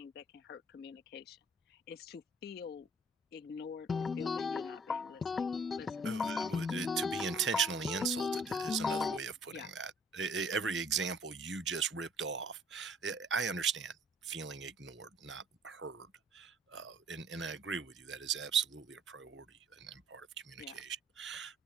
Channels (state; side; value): normal; both; correlation 0.57